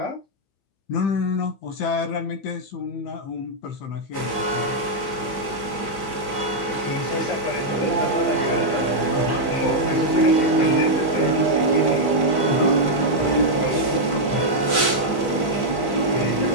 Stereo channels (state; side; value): late; right; 15 ms